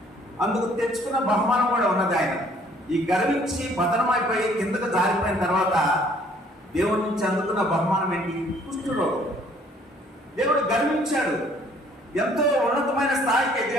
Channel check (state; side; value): normal; both; correlation 0.59